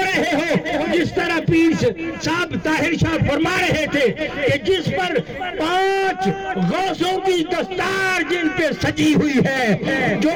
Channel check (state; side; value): identical; both; correlation 1.00